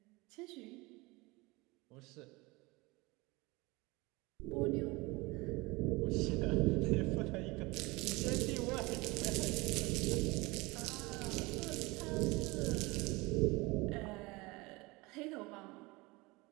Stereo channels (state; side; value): quieter; left; 23.8 dB